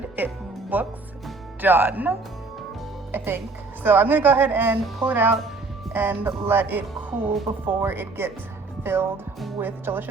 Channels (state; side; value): quieter; left; 3.8 dB